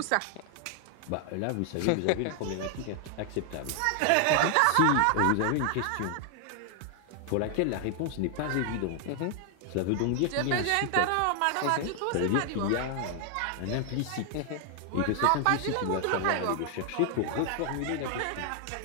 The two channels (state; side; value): different; both; correlation 0.00